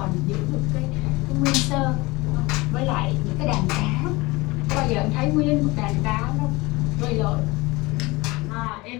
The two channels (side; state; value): right; quieter; 22.8 dB